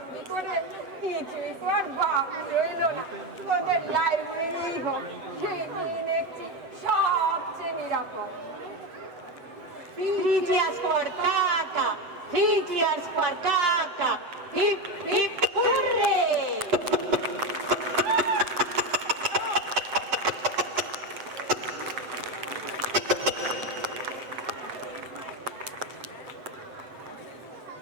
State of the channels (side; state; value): left; late; 7.7 ms